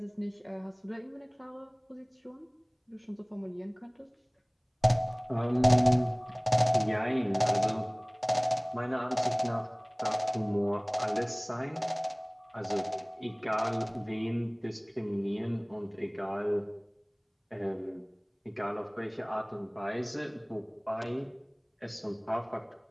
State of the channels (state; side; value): identical; both; correlation 1.00